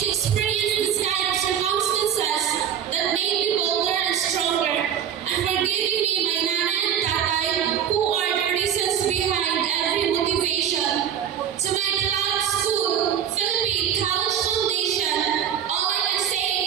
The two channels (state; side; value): quieter; left; 9.0 dB